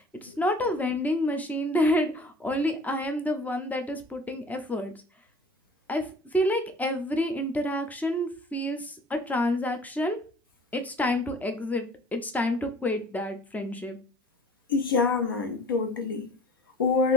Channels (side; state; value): both; normal; correlation 0.48